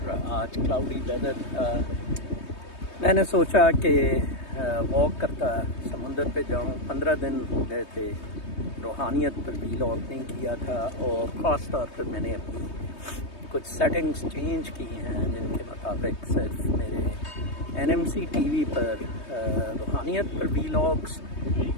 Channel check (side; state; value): right; late; 3.2 ms